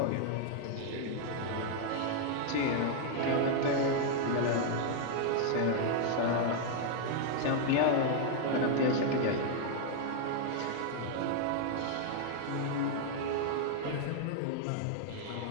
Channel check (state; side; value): different; both; correlation 0.00